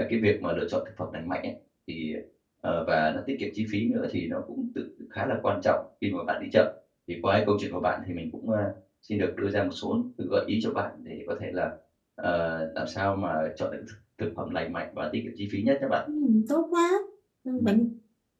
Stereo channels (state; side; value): identical; both; correlation 1.00